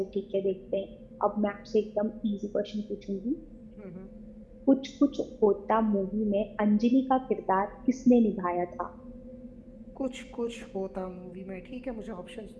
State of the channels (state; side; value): identical; both; correlation 1.00